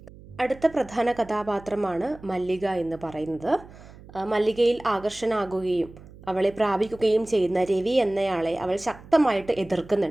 അടുത്ത പ്രധാന കഥാപാത്രമാണ് മല്ലിക എന്ന് പറയുന്നത്. മല്ലികയിൽ ആകർഷണാകുകയും അവളെ പ്രാപിക്കുകയും ചെയ്യുന്ന രവി എന്നയാളെ അവൾ ശക്തമായിട്ട്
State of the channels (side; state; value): right; noise; hum, 20 dB below the sound